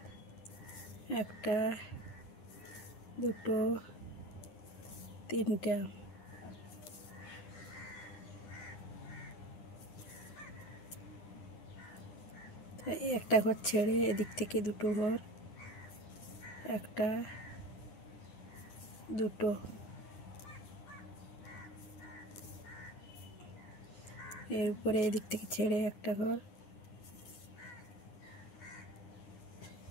একটা, দুটো, তিনটা। একটা ঘর ছেড়ে এদিক থেকে দুটো ঘর, একটা, দুটো, এর উপরে এদিক থেকে ছেড়ে একটা ঘর,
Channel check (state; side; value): late; right; 9.8 ms